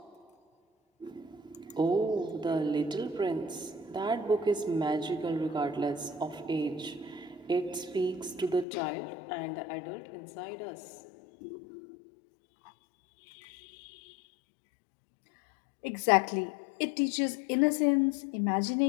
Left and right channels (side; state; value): right; drops out; at 8.7 s